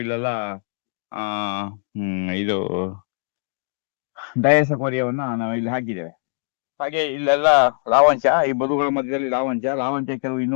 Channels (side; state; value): right; silent; digital silence